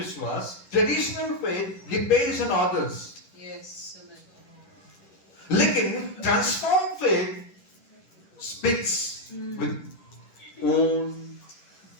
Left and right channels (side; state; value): right; late; 11 ms